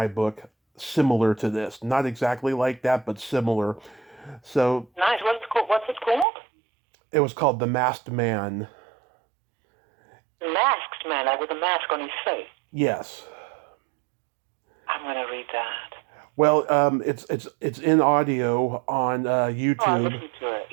book similar to this. Not exactly like that, but similar. So Nice. What's it called? it was called The Masked Man. The Masked Man, like with a mask on his face. Yes. I'm gonna read that. Well, it's in audio on Oh, I YouTube. listened to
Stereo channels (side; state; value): left; drops out; at 6.2 s